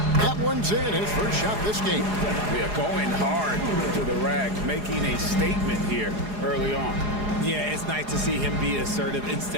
That one's in, his first shot this game. We are going hard to the rack, making a statement here early on. Yeah, it's nice to see him be assertive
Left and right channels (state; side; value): late; left; 4.8 ms